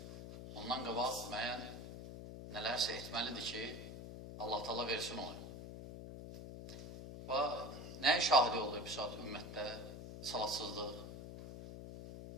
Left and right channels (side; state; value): left; noise; hum, 10 dB below the sound